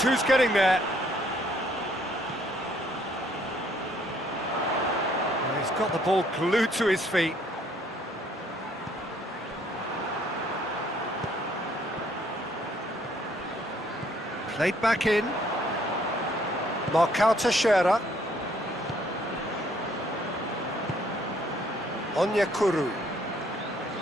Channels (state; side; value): normal; both; correlation 0.65